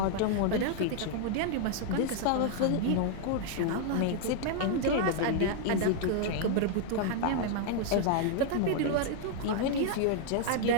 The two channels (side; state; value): both; different; correlation 0.00